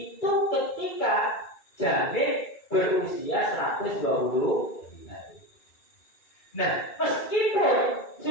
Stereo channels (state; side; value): late; right; 2.3 ms